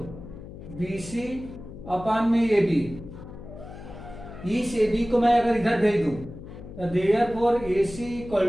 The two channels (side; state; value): left; noise; hum, 14 dB below the sound